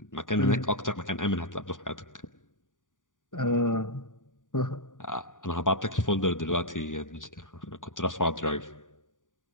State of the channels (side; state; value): right; late; 0.88 ms